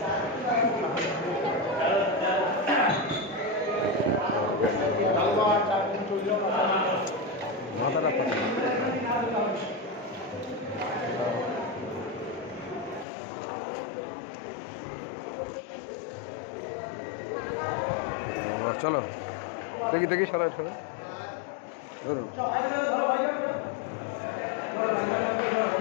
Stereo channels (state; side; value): drops out; right; at 13.1 s